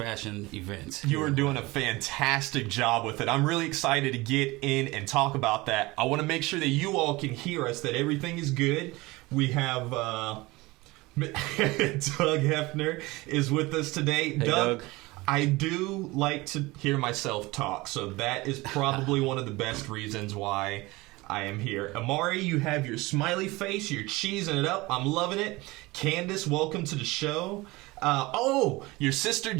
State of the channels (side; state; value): left; quieter; 21.7 dB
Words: events. You are doing a fantastic job with it. I'm really excited to get in and talk about that. I want to make sure that you all can hear us, that everything is good. We have Doug Hefner is with us today. Hey, Doug. I do like to hear myself talk, so that is probably one of the best reasons why I am here. Amari, you have your smiley face. You're cheesing it up. I'm loving it. Candace, welcome to the show. Your sister